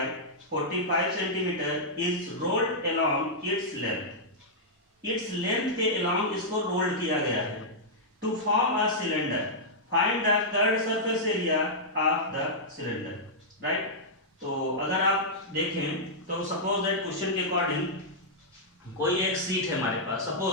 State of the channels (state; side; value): normal; both; correlation -0.10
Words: 45 centimetre is rolled along its length. Its length के अलोंग इसको रोल्ड किया गया है, to form a cylinder find the curved surface area of the cylinder, right. तो अगर आप देखें तो सपोज दैट क्वेश्चन के अकॉर्डिंग कोई एक सीट है हमारे पास,